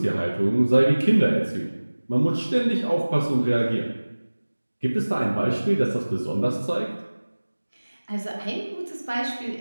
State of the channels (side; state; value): both; inverted; correlation -1.00